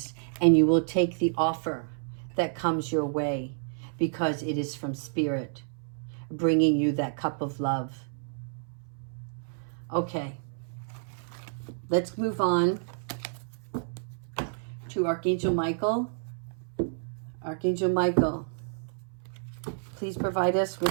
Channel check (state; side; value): silent; left; 58 dB below the other